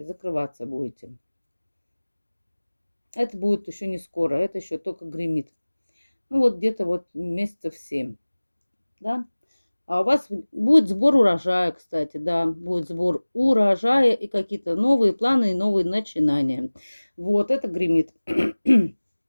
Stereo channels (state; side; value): inverted; both; correlation -1.00